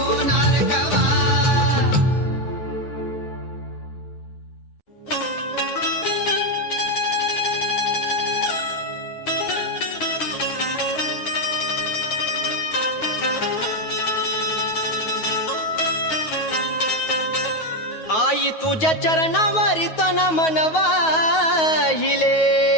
कवा आई तुझ्या चरणावरी तन मनवाहिले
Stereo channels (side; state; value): right; late; 9.3 ms